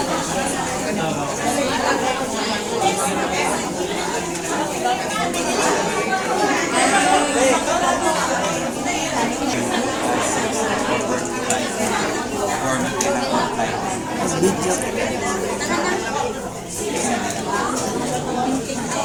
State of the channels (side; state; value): both; identical; correlation 1.00